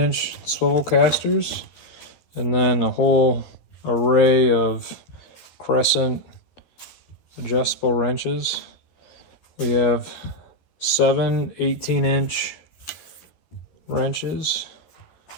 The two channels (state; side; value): late; right; 12 ms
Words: swivel casters, and then a whole array of crescent adjustable wrenches. We have 7 18-inch wrenches,